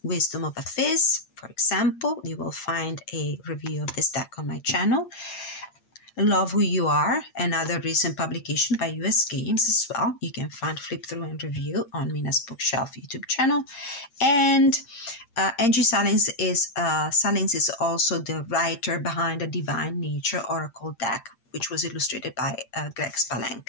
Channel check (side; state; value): right; late; 8.6 ms